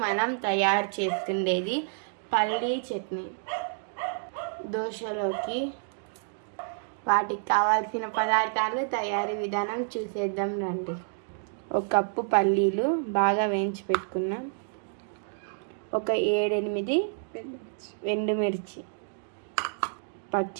మనం తయారు చేసుకునేది పల్లీ చట్నీ దోశలోకి. వాటికి కావాల్సిన పదార్థాలు, తయారీ విధానం చూసేద్దాం రండి. ఒక కప్పు పల్లీలు బాగా వేయించి పెట్టుకున్నాం. ఒక 7-8 ఎండుమిర్చి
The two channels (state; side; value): silent; left; digital silence